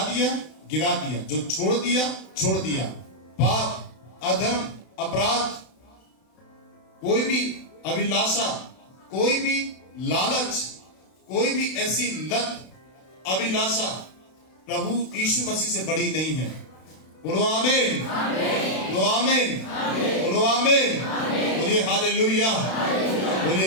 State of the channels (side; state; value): right; late; 32 ms